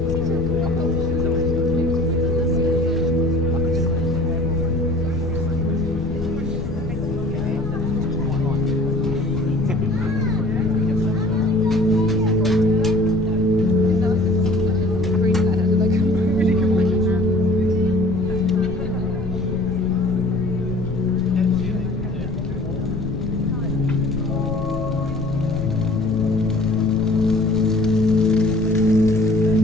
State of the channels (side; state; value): left; noise; rumble, 8 dB below the sound